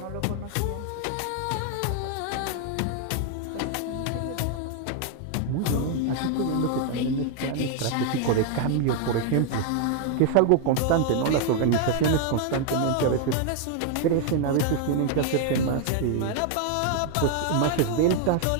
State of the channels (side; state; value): both; different; correlation 0.00